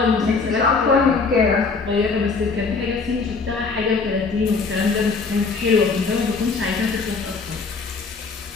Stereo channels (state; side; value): quieter; right; 4.5 dB